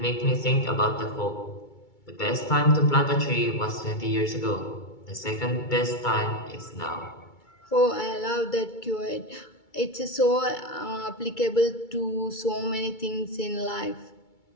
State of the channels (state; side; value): late; right; 2.3 ms